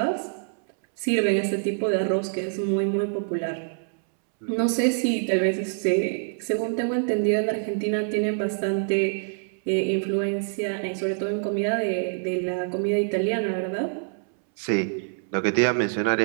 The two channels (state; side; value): silent; left; 61 dB below the other